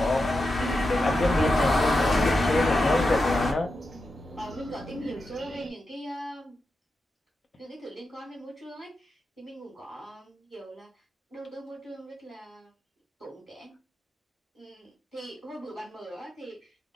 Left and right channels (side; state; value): both; normal; correlation 0.89